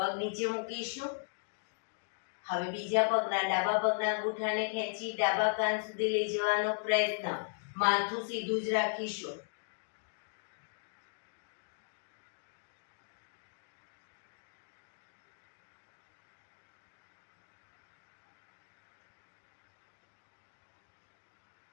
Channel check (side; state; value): right; silent; digital silence